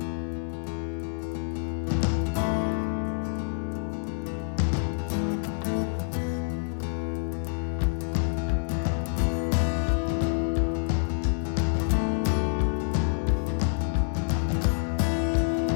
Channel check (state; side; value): silent; right; 60 dB below the other